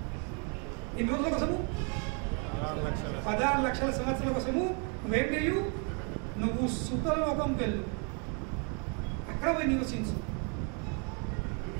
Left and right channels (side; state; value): left; quieter; 37.2 dB